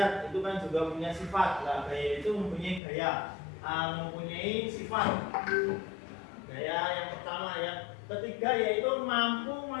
itu kan juga punya sifat. Nah, gaya itu mempunyai gaya, mempunyai sifat. Gaya yang pertama, yang ketiga yaitu mampu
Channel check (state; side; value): drops out; right; at 2.8 s